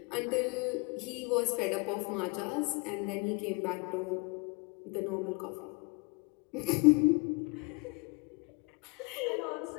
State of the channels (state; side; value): quieter; right; 29.6 dB